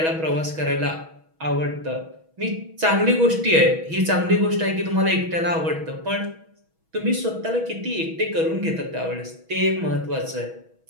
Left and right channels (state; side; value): late; left; 6.2 ms